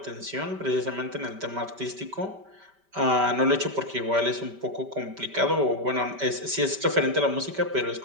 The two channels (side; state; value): left; late; 5.1 ms